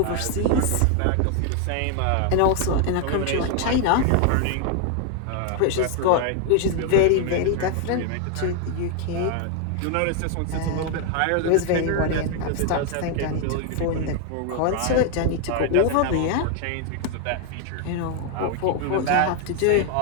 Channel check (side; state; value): both; different; correlation 0.00